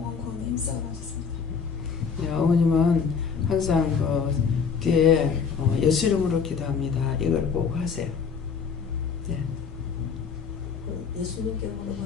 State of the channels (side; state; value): right; quieter; 6.1 dB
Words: 구원에 힘써가셨습니다. 네, 어머님은 항상 뒤에 예수 이름으로 기도합니다. 이걸 꼭 하세요. 네. 예수님께